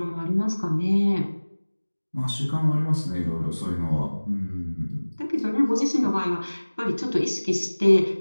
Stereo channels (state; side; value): inverted; both; correlation -1.00